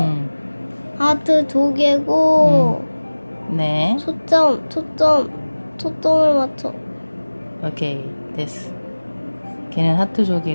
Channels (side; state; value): both; inverted; correlation -1.00